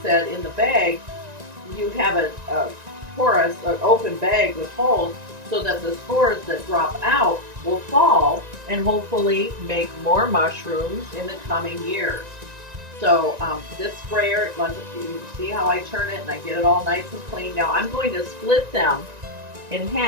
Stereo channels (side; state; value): left; late; 1.9 ms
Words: said, in the bag, you have a porous, an open bag with holes so that the spores that drop out will fall and hopefully make more mushrooms in the coming years. So this sprayer, you see how I turn it and I get it all nice and clean. Now I'm going to split them in